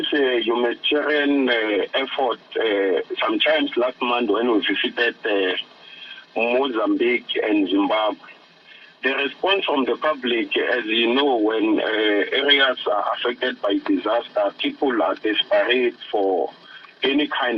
humanitarian effort sometimes last month when we visited Mozambique and Zimbabwe. The response from the public, as you know, when areas are affected by disaster, people are desperate for any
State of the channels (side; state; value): both; identical; correlation 1.00